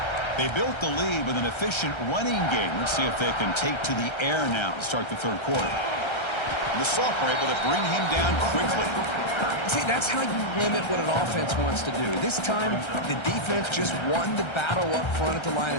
They built the lead with an efficient running game. Let's see if they can take to the air now to start the third quarter. And the sophomore able to bring him down quickly. See, that's how you limit what an offense wants to do. This time, the defense just won the battle up front at the line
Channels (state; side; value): late; right; 1.3 ms